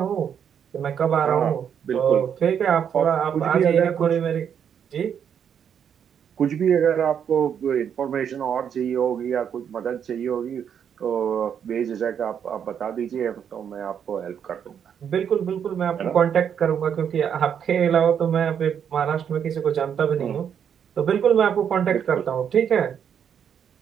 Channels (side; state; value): left; quieter; 8.2 dB